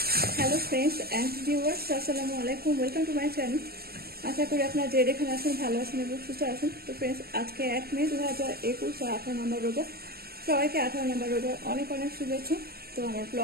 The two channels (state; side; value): late; left; 0.45 ms